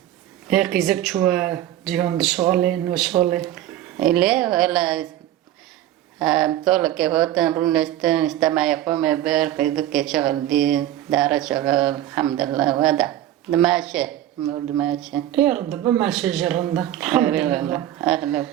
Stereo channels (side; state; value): left; quieter; 12.9 dB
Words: هيك زك شو جيهم دشغلين وشغلي إليه ولا طول كهوتن رونستن استمع يقوم بير في شغل دي دار شغل الحمد لله وهذا دماشي دماشي يرد بما شجرنا الحمد لله أهلا